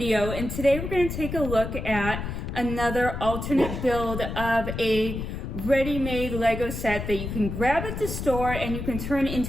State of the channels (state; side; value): noise; left; rumble, 5 dB below the sound